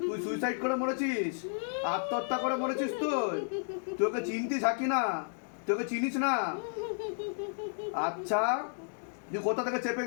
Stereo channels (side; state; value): right; silent; digital silence